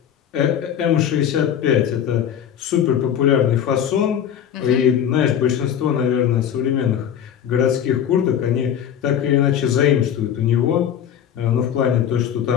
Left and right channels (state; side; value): quieter; right; 9.3 dB